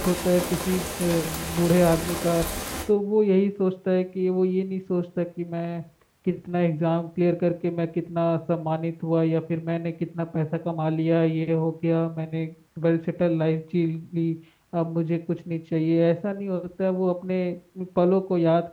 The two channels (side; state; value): both; identical; correlation 1.00